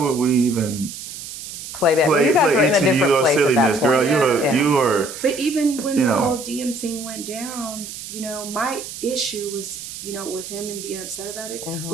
we even play that? You guys were in a different place silliness, at that point. girl. You were. But even when the whole DM thing went down, my issue was, with him and being upset about it,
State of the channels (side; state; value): right; noise; hiss, 10 dB below the sound